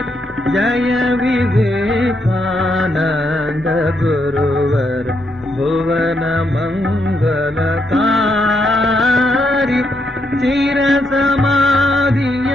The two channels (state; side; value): normal; both; correlation 0.78